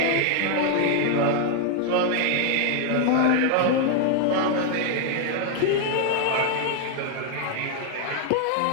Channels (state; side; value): different; both; correlation 0.00